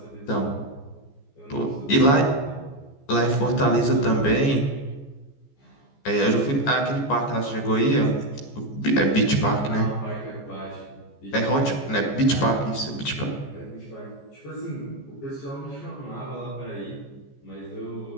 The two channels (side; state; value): right; late; 14 ms